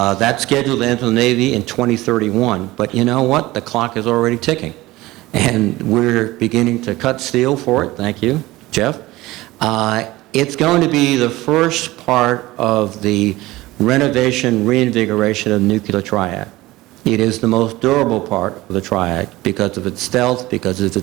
scheduled to enter the Navy in 2031, but you know what? The clock is already ticking, and we're beginning to cut steel for it. Thank you, Jeff. It's going to be the first part of the renovation, reinvigoration of the nuclear triad. It is the most durable part of the triad because of its stealth, because of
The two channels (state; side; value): quieter; left; 18.7 dB